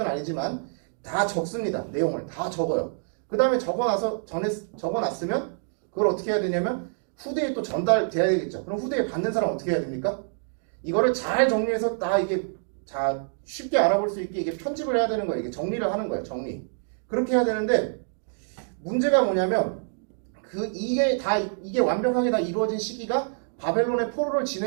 아니지만 다 적습니다. 내용을 다 적어요. 그 다음에 적어놨으면 그걸 어떻게 해야 되냐면 후대에 또 전달돼야 되겠죠. 그럼 후대에 받는 사람 어떻게 해야 됩니까? 이거를 잘 정리해서 다 이게 자 쉽게 알아볼 수 있게 이게 편집을 해야 되는 거예요. 이게 정리를 하는 거예요. 정리. 그렇게 해야 되는데 문제가 뭐냐면 이게 완벽하게 다 이루어진 시기가 바벨론의 포로를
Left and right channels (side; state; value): left; silent; digital silence